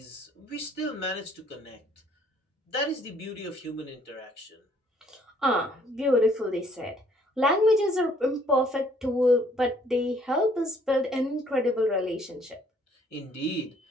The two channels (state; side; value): normal; both; correlation 0.63